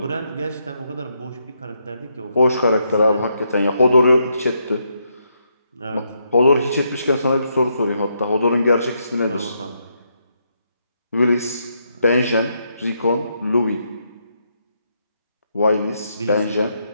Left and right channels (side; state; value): both; inverted; correlation -0.78